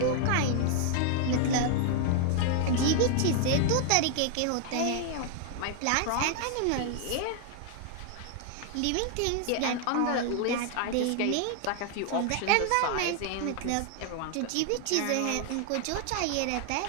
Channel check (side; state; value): both; different; correlation 0.00